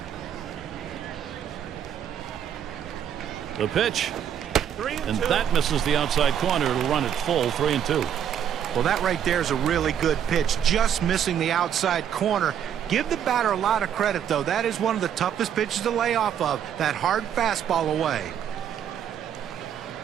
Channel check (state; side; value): quieter; left; 9.2 dB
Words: The pitch. And that misses the outside corner. It'll run it full, 3-2. Well, that right there is a really good pitch, just missing the outside corner. Give the batter a lot of credit, though. That is one of the toughest pitches to lay off of, that hard fastball away.